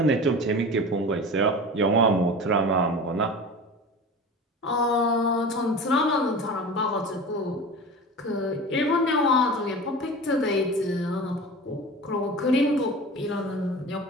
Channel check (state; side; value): normal; both; correlation 0.34